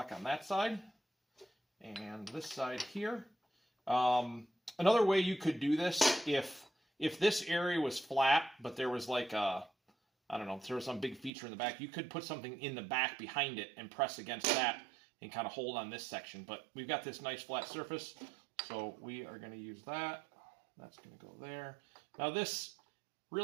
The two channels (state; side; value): drops out; left; at 11.3 s